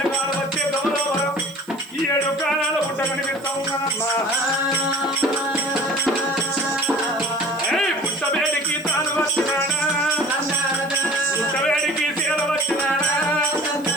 వచ్చే గౌరవం ఈ 7 కాలాల పుట్ట కనిపిస్తా ఉన్నానమ్మా పుట్టవేడికి తాను వచ్చినాడా పుట్టవేడికి సీల వచ్చినాడా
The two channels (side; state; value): right; noise; hiss, 24 dB below the sound